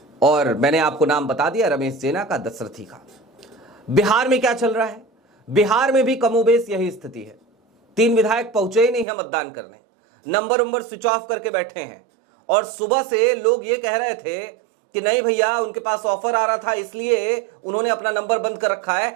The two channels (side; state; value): left; drops out; at 9.1 s